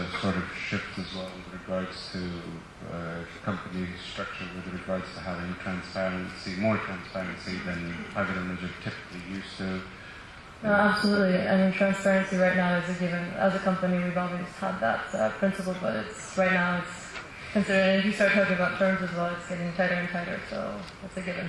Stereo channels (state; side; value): identical; both; correlation 1.00